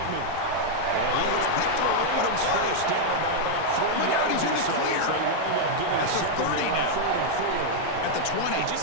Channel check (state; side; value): different; both; correlation -0.01